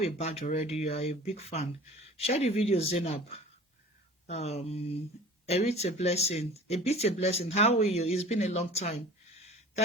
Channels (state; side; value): normal; both; correlation 0.43